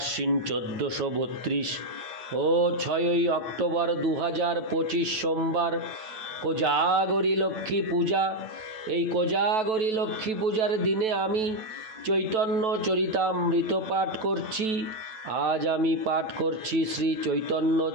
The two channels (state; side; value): late; left; 9.2 ms